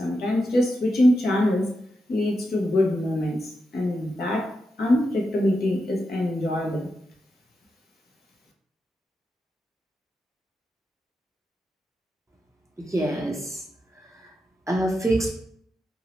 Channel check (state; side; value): normal; both; correlation 0.87